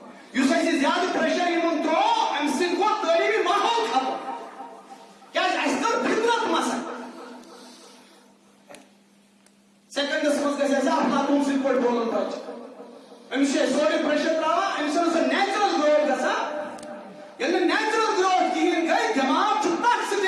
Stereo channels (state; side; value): identical; both; correlation 1.00